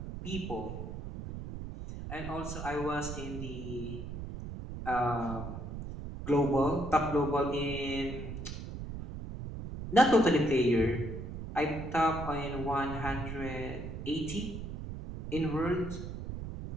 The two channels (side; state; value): right; noise; rumble, 8 dB below the sound